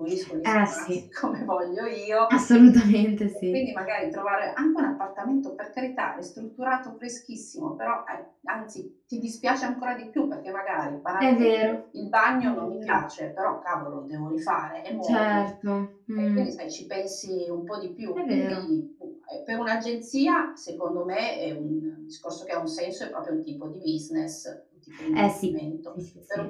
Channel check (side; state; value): both; identical; correlation 1.00